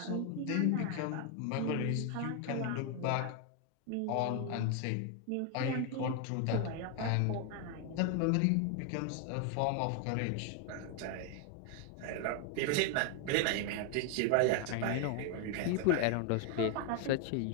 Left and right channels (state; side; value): different; both; correlation 0.01